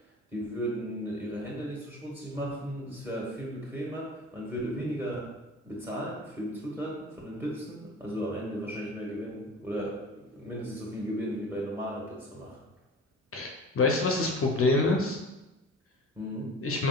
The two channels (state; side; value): normal; both; correlation 0.40